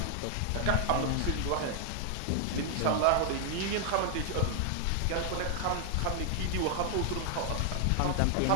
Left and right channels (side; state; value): both; different; correlation 0.00